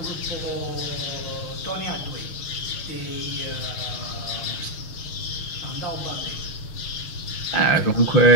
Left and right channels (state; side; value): late; right; 6.4 ms